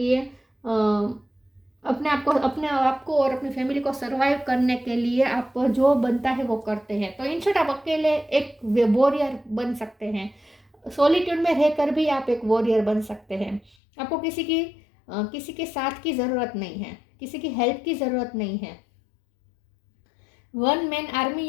अपने आप को और अपनी फैमिली को सर्वाइव करने के लिए आप जो बनता है वो करते हैं। तो इन शॉर्ट आप अकेले एक वॉरियर बन सकते हैं। सॉलिट्यूड में रहकर भी आप एक वॉरियर बन सकते हैं। आपको किसी के साथ की ज़रूरत नहीं है, किसी की हेल्प की ज़रूरत नहीं है। वन मैन आर्मी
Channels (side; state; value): right; drops out; at 13.8 s